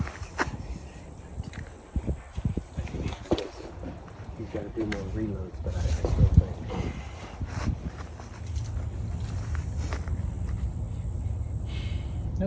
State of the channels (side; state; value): both; identical; correlation 1.00